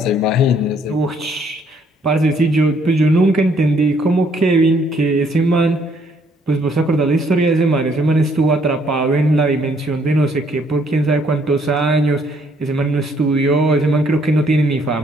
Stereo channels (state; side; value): normal; both; correlation 0.66